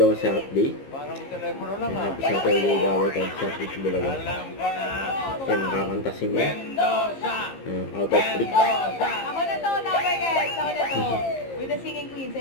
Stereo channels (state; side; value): late; right; 15 ms